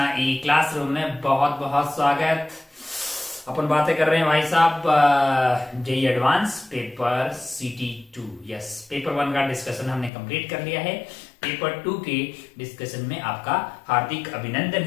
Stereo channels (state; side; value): drops out; right; at 10.1 s